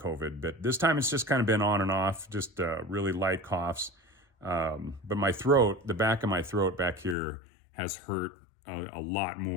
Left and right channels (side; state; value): right; drops out; at 7.2 s